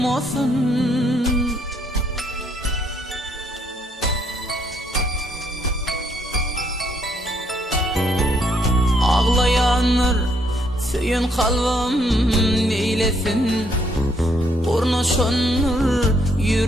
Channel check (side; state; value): both; normal; correlation 0.70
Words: Ağlayanlar söyün kalbim neylesin, ornaşanlar